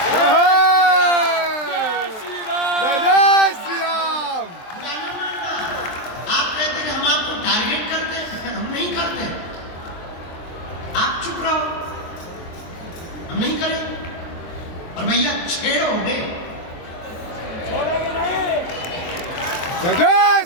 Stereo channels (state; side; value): late; right; 23 ms